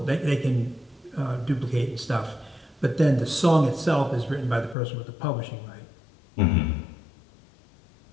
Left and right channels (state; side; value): drops out; right; at 4.8 s